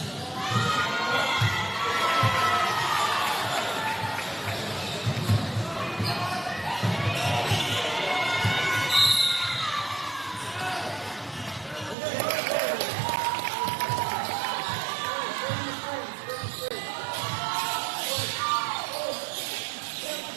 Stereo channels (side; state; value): left; drops out; at 12.0 s